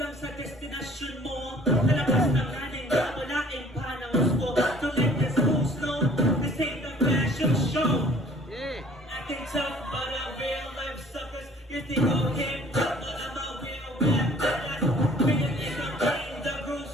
sa destinasyon mo. Nalabas ng nanin na walaing panahon ko. So let this go slow, this ain't a fashion show. Acting tough, but I'm real life suckers. You think I'm hip hop, but I'm a real rap badass. Feeling is I'm playing the grooves,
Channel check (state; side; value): normal; both; correlation 0.53